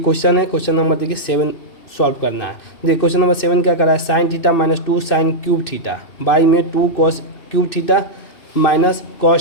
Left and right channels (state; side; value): late; right; 2.8 ms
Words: है। क्वेश्चन नंबर देखिए 7 सॉल्व करना है। देखिए क्वेश्चन नंबर 7 क्या करा है, sine theta minus 2 sine cube theta by में 2 cos cube theta minus